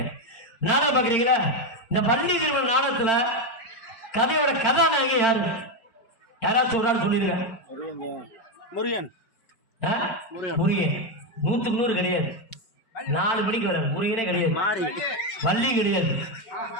நாடகம் பாக்குறீங்களா? இந்த பள்ளி திருமண நாடகத்துல கதையோட கதாநாயகி யாரு? யாராச்சும் ஒரு ஆள் சொல்லிடுங்க. முருகன். 100க்கு 100 கிடையாது. 4 மணிக்கு வர முருகனே கிடையாது, வள்ளி கிடையாது,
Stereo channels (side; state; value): right; late; 4.4 ms